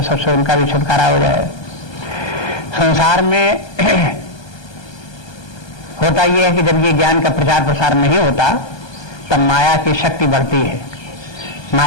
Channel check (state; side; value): late; right; 1.2 ms